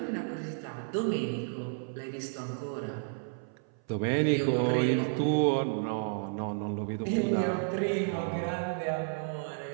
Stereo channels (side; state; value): left; silent; 57 dB below the other